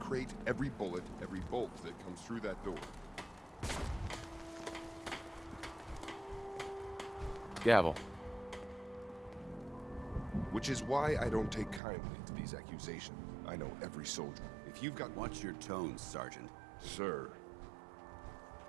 every bullet, every bolt that comes through that door. Gavel. Which is why I don't take kindly to these accusations. I know every soldier. If you've got... Watch your tone, Sergeant. Sir.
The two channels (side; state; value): left; drops out; at 11.8 s